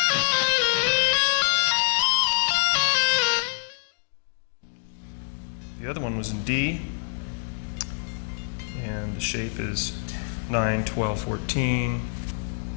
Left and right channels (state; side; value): silent; right; digital silence